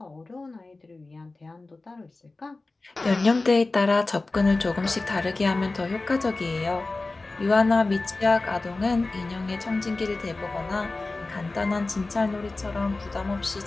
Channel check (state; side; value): quieter; right; 3.3 dB